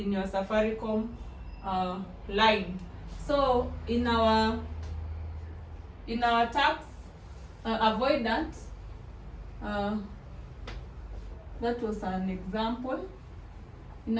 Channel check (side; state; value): both; identical; correlation 1.00